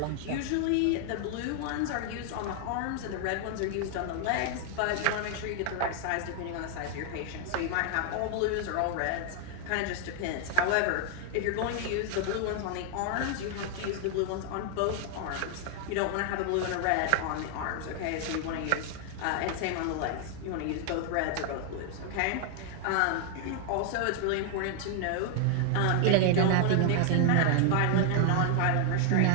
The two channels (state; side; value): different; both; correlation 0.00